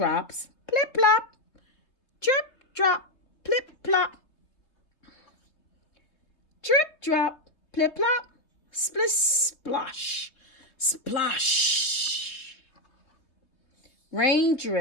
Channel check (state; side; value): late; right; 3.3 ms